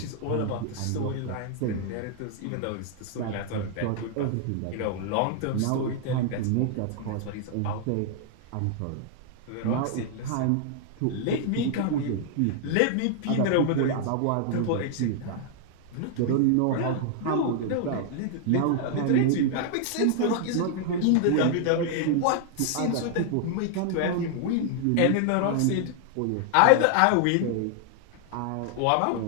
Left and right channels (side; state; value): both; different; correlation 0.00